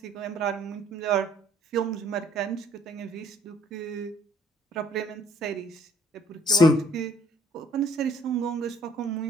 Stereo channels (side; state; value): both; normal; correlation 0.61